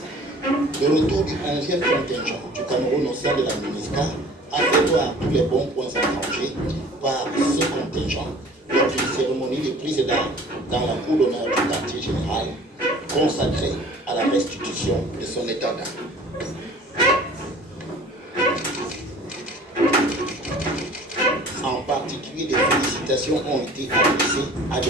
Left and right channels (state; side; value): normal; both; correlation 0.48